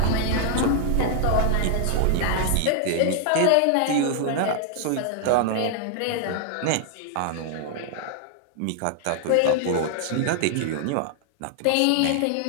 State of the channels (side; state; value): both; different; correlation 0.00